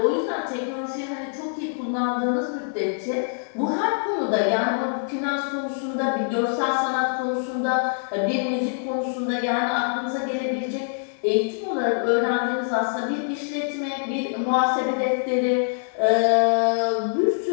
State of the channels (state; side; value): silent; right; 62 dB below the other